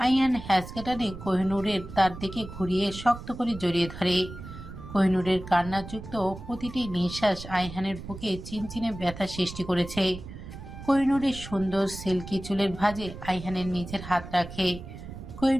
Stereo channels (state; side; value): noise; right; rumble, 12 dB below the sound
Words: আইহান হ্যাঁচকা টানে কোহিনূরের তার দিকে ঘুরিয়ে শক্ত করে জড়িয়ে ধরে। কোহিনূরের কান্নাযুক্ত প্রতিটি নিঃশ্বাস আইহানের বুকে চিনচিনে ব্যথা সৃষ্টি করেছে। কোহিনূরের সুন্দর সিল্কি চুলের ভাঁজে আইহানের নিচের হাত রাখে।